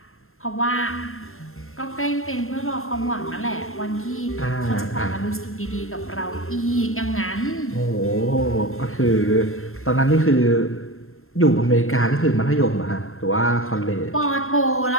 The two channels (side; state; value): right; late; 0.62 ms